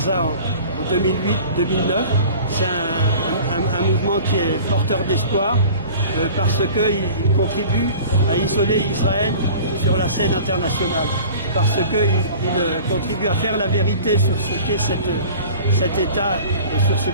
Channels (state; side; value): inverted; both; correlation -0.43